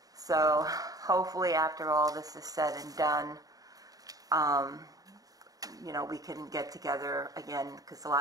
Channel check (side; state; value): left; late; 0.18 ms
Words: So hopefully after all this is said and done, you know, we can get together again, because the